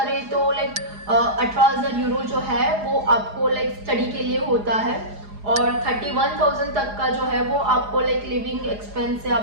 तो लाइक 18,000 यूरो जो है वो आपको लाइक स्टडी के लिए होता है, और 31,000 तक का जो है वो आपको लाइक लिविंग एक्सपेंस है,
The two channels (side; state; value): left; late; 4.9 ms